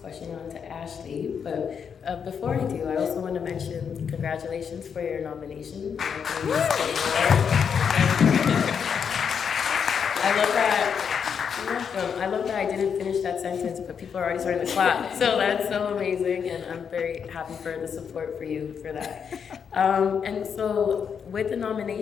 on to Ashley, but before I do, I also want to mention congratulations for your nomination. I love that I didn't finish that sentence, but people are already starting to clap. So that's so amazing, and I'm very happy for the support for you for that. And so with the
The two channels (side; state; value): right; quieter; 7.0 dB